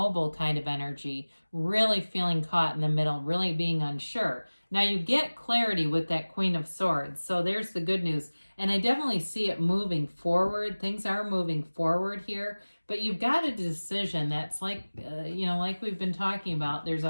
kind of energy, really feeling caught in the middle, really being unsure. Now you get clarity with that Queen of Swords. So there's the good news. And I definitely see it moving forward. Things are moving forward here. But you've got a decision that's like, like we've been talking about. There's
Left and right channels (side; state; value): both; inverted; correlation -1.00